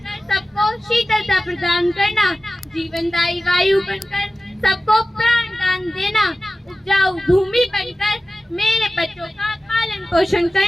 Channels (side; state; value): both; normal; correlation 0.95